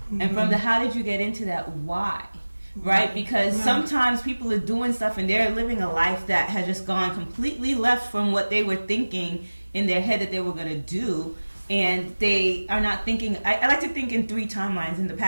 And from the how did you get into that, why? Right? Because sometimes people are doing stuff and they're living a life that has just gone completely left from what they were thinking in their head that they were going to do. And they are not thinking, I like to think in 3 timelines, in the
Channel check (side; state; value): both; inverted; correlation -1.00